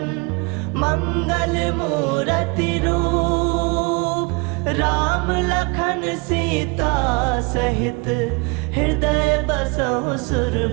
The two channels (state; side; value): quieter; left; 29.4 dB